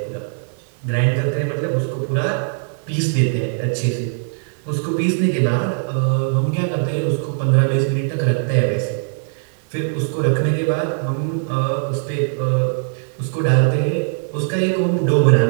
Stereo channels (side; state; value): left; silent; digital silence